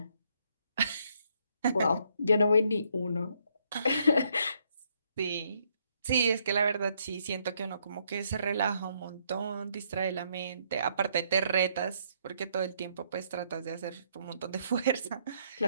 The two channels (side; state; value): both; inverted; correlation -0.71